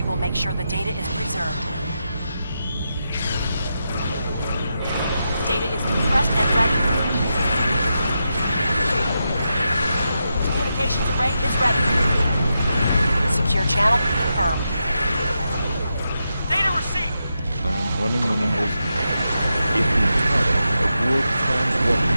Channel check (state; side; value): inverted; both; correlation -0.87